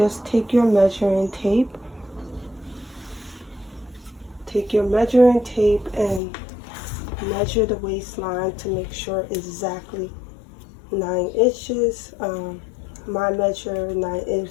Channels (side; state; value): right; drops out; at 6.2 s